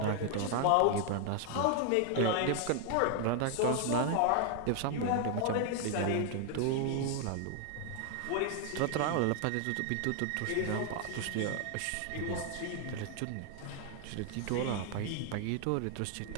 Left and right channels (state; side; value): different; both; correlation 0.00